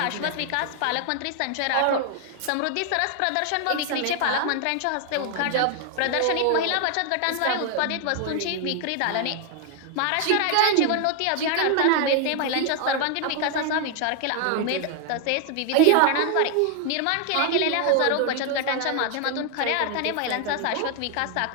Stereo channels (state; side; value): different; both; correlation 0.00